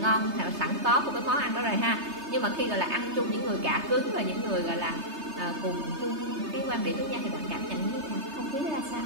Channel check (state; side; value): late; left; 3.3 ms